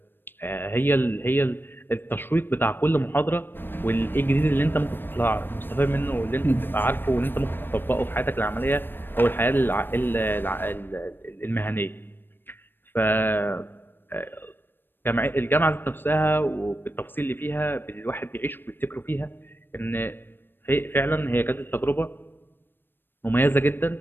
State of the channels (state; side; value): late; right; 0.097 ms